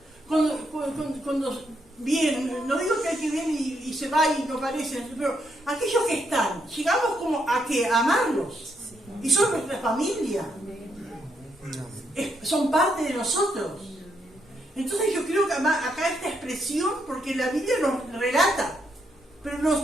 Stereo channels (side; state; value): both; normal; correlation 0.77